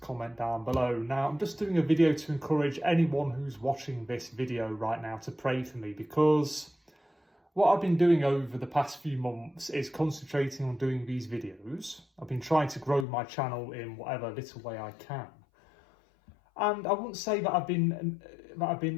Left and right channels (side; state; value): right; drops out; at 13.1 s